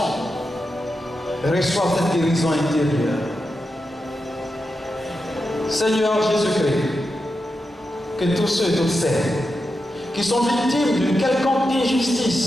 reçoivent cette guérison intérieure. Seigneur Jésus-Christ, que tous ceux et toutes celles qui sont victimes d'une quelconque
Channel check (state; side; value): normal; both; correlation 0.88